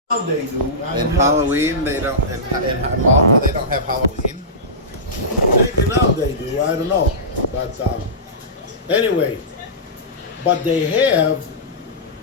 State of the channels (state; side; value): normal; both; correlation -0.18